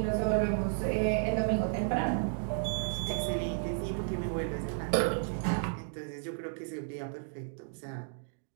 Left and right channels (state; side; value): silent; left; digital silence